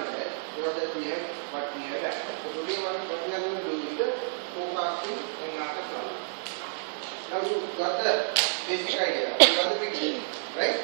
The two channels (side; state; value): left; silent; 56 dB below the other